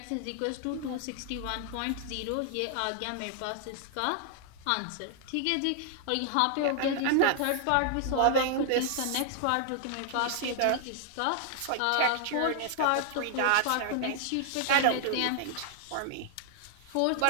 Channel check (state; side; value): different; both; correlation 0.00